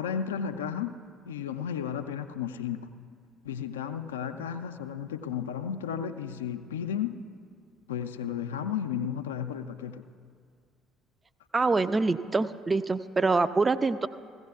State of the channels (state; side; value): normal; both; correlation 0.53